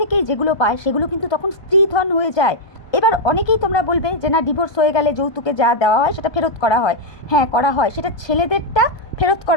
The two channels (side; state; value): right; late; 1.3 ms